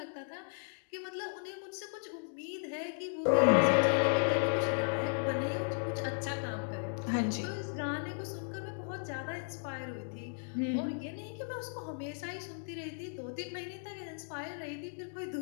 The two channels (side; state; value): right; silent; digital silence